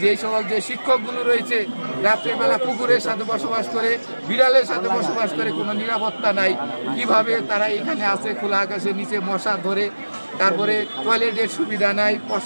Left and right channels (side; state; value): both; inverted; correlation -1.00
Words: এই সকল যে শিক্ষকগুলো রয়েছে রাত্রেবেলা কুকুরের সাথে বসবাস করে, বিড়ালের সাথে বসবাস করে, কোনো নিরাপত্তা নাই। কিভাবে তারা এখানে আছে খোলা আকাশের নিচে মশা ধরে, তারপরে টয়লেটের সুবিধা নাই,